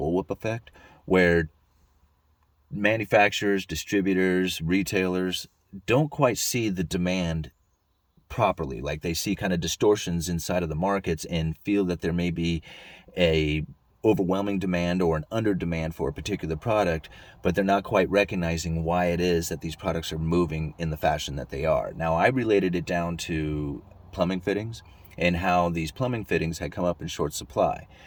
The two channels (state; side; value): identical; both; correlation 1.00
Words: effect, where manufacturers, distributors, retailers don't quite see the demand properly. Like they see kind of distortions inside of the markets and feel that there may be a overwhelming demand or an under demand for a particular product, but they're not quite recognizing why it is that these products are moving in the fashion that they are. Now, I related it down to plumbing fittings and how these plumbing fittings had come up in short supply.